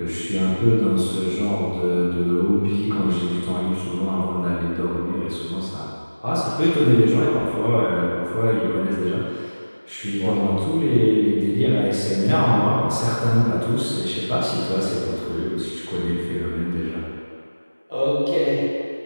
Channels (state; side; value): inverted; both; correlation -1.00